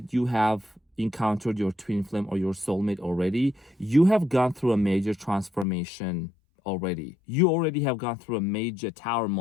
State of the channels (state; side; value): drops out; right; at 5.7 s